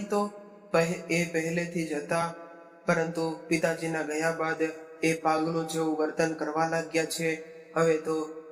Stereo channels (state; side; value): identical; both; correlation 1.00